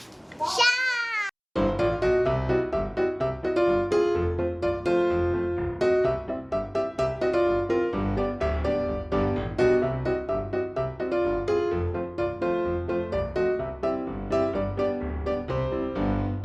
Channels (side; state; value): both; identical; correlation 1.00